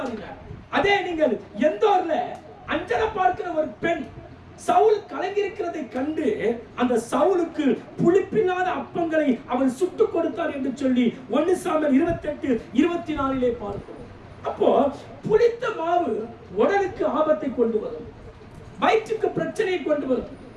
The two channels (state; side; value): identical; both; correlation 1.00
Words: அதே நீங்கள் எந்தோர்ல அஞ்சலை பார்க்கிற ஒரு பெண் சவுல் கலங்கியிருக்கிறதை கண்டு அந்த சவுலுக்கு புளிப்பில்லாத அப்பங்களை அவன் சுட்டு கொடுத்தார் என்று சொல்லி 1 சாமுவேல் 28:24 பார்க்கிறோம். அப்போ புளித்த மாவு உடலுக்கு ஆபத்தை கொண்டு வரும், வயிற்றுக்கு பிரச்சனையை கொண்டு வரும்.